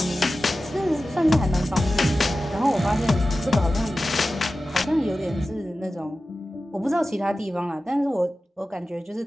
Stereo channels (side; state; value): both; normal; correlation 0.94